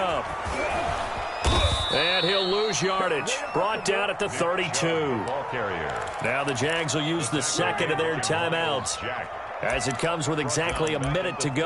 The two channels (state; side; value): identical; both; correlation 1.00